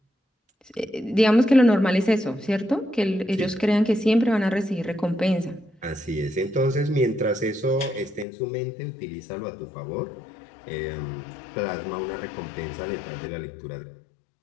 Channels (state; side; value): drops out; right; at 8.2 s